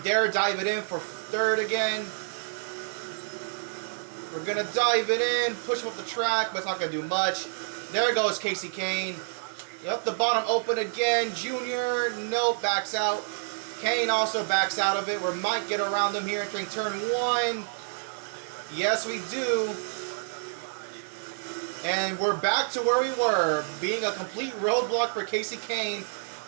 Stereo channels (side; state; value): left; silent; digital silence